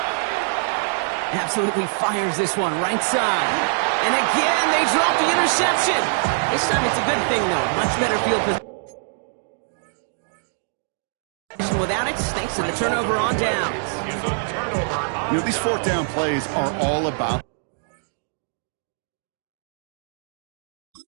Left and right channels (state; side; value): silent; left; digital silence